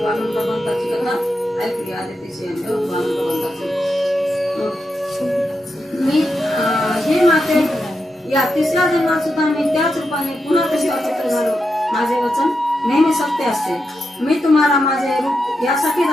वामन भगवंताची कथा ऐकली, आदितीची वामन भगवंताची. मी हे माते, या तिसऱ्या जन्मात सुद्धा मी त्याच रूपाने पुन्हा कशा पुत्र झालो. माझे वचन नेहमी सत्य असते. मी तुम्हाला माझे रूप यासाठी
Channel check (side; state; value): both; normal; correlation 0.86